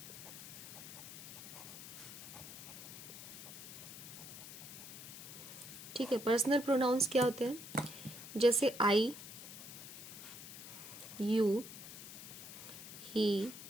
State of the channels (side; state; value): left; noise; hiss, 12 dB below the sound